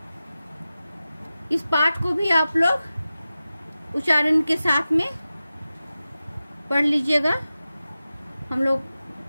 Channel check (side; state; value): both; inverted; correlation -0.95